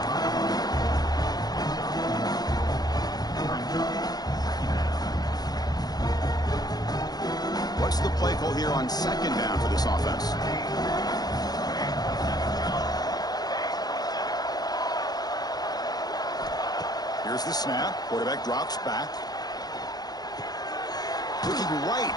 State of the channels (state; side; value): late; right; 0.19 ms